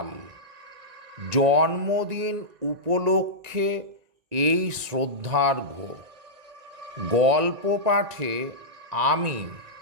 জন্মদিন উপলক্ষে এই শ্রদ্ধার্ঘ্য গল্প পাঠে আমি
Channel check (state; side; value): late; left; 1.9 ms